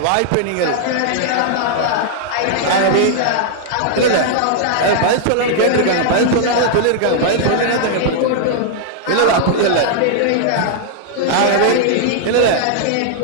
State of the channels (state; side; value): different; both; correlation -0.01